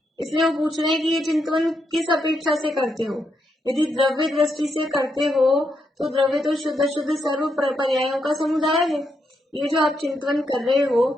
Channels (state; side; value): normal; both; correlation 0.80